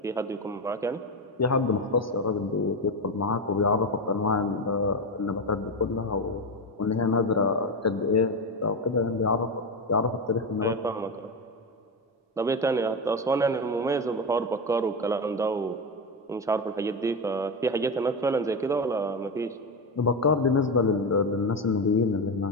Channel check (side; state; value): both; normal; correlation 0.15